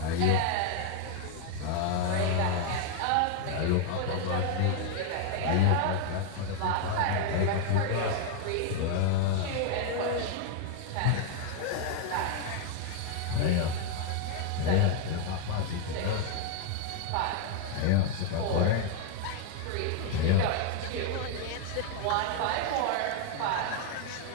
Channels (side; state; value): both; different; correlation 0.00